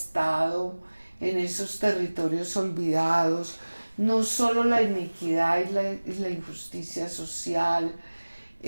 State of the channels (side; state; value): both; inverted; correlation -1.00